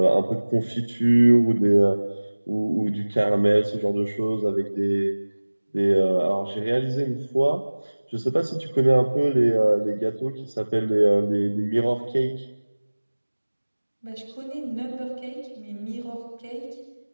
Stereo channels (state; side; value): inverted; both; correlation -1.00